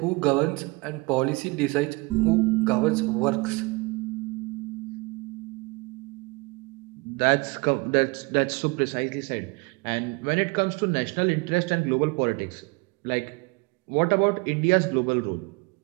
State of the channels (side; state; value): left; quieter; 26.7 dB